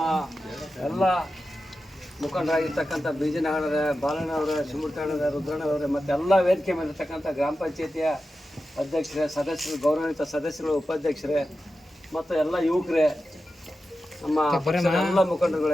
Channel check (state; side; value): normal; both; correlation 0.92